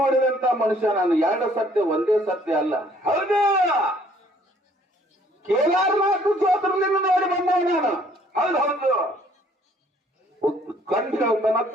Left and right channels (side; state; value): both; normal; correlation 0.61